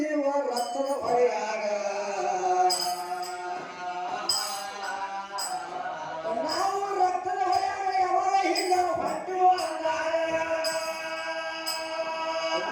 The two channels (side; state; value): both; identical; correlation 1.00